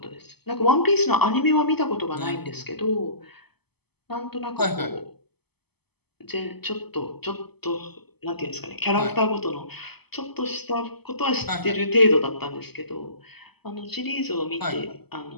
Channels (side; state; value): right; late; 0.97 ms